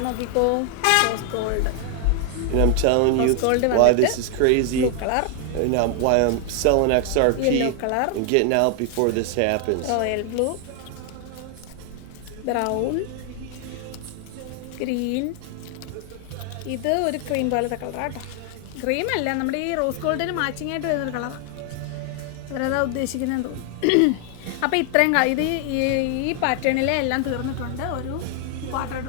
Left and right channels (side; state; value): both; different; correlation 0.00